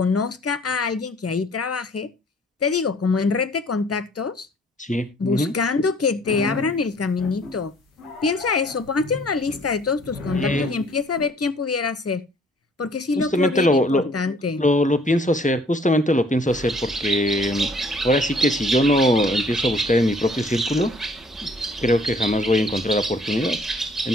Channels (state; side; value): normal; both; correlation 0.58